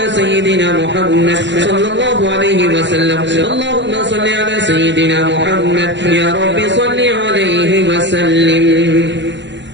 سيدنا محمد صلى الله عليه وسلم. اللهم صل على سيدنا محمد يا رب صل عليه وسلم.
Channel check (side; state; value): left; late; 0.52 ms